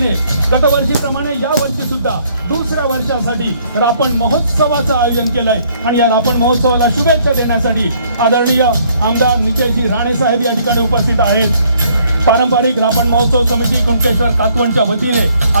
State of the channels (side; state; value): both; inverted; correlation -0.64